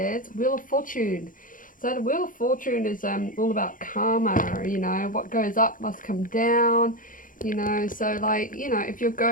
Wheel of Fortune. So the Wheel of Fortune is all about karma, what goes up must come down. So if you're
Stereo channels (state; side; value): late; right; 0.39 ms